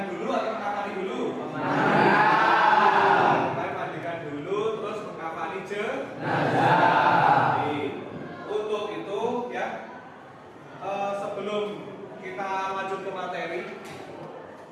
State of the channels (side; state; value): both; identical; correlation 1.00